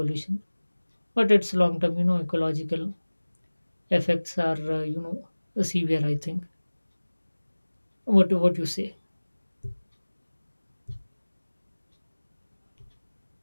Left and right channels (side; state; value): both; inverted; correlation -1.00